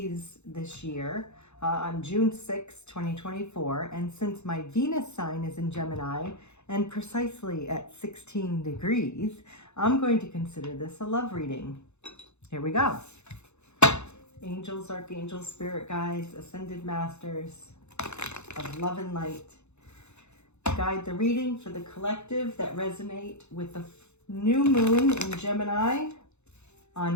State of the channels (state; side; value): late; right; 0.82 ms